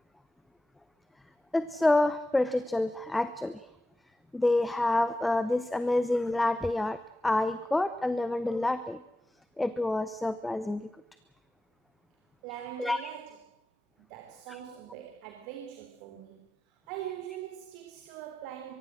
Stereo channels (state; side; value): normal; both; correlation 0.94